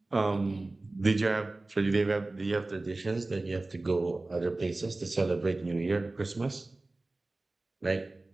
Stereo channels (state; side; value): quieter; left; 3.0 dB